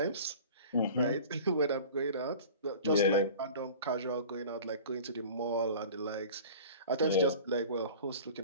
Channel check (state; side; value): inverted; both; correlation -0.41